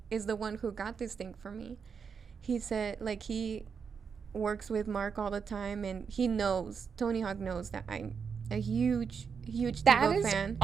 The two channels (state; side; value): quieter; left; 6.2 dB